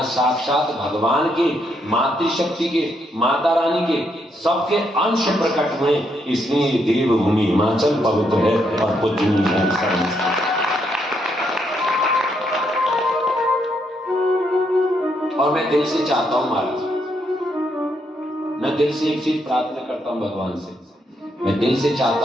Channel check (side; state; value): both; normal; correlation 0.76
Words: साक्षात भगवान के, मातृशक्ति के, माता रानी के सबके अंश प्रकट हुए। इसलिए ये देवभूमि हिमाचल पवित्र है और पूजनीय है। और मैं दिल से चाहता हूं महाराज, मैं दिल से एक चीज प्रार्थना करता हूं भगवान से। मैं दिल से